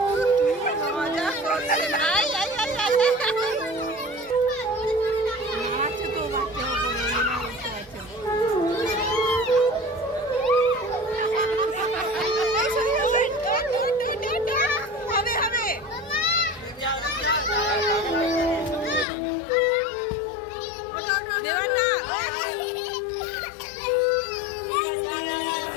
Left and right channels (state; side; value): drops out; right; at 19.1 s